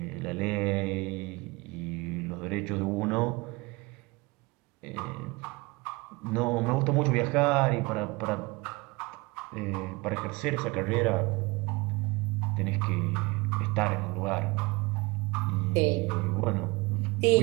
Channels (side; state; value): left; quieter; 24.7 dB